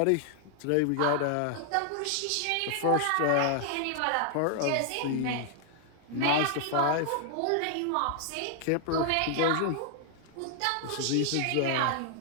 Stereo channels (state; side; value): different; both; correlation 0.00